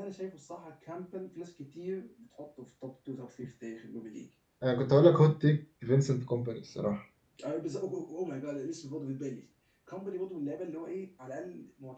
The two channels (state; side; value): identical; both; correlation 1.00